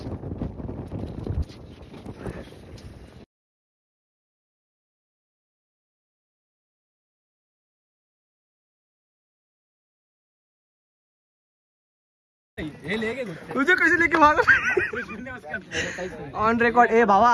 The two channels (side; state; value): both; identical; correlation 1.00